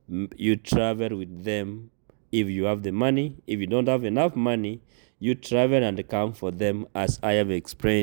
you travel with them if you have the money. If you don't have enough money, you travel and come for them, as I have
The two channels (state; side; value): silent; left; digital silence